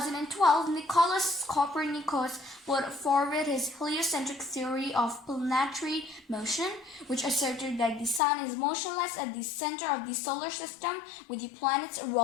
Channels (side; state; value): right; drops out; at 8.2 s